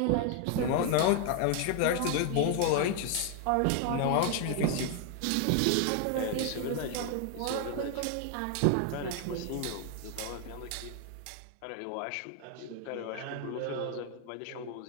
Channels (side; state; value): both; different; correlation 0.00